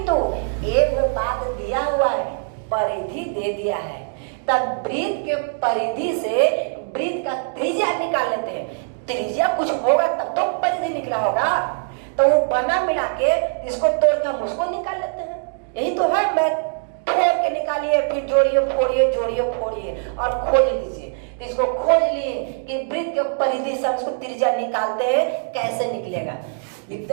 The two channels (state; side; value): silent; left; digital silence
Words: एक बात दिया हुआ है, परिधि दे दिया है, तब वृत्त के परिधि से वृत्त का त्रिज्या निकाल लेते हैं। त्रिज्या कुछ होगा तब तो परिधि निकला होगा, तो वो बना मिला के इसको तोड़ के हम उसको निकाल लेते हैं। यही तो है मैथ, तोड़ के निकालिए, फिर जोड़िए फोड़िए, जोड़िए फोड़िए और खोज लीजिए। तो इसको खोज लिए कि वृत्त के परिधि से इसको त्रिज्या निकालते हैं, कैसे निकलेगा।